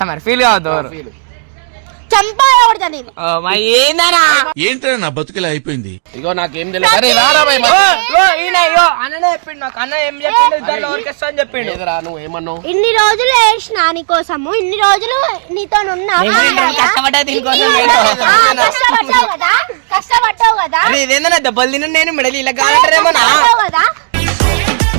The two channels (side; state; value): left; silent; digital silence